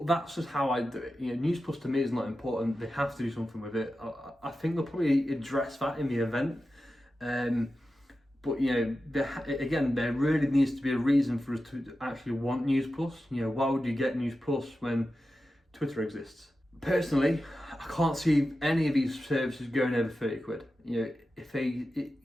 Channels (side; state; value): both; normal; correlation 0.92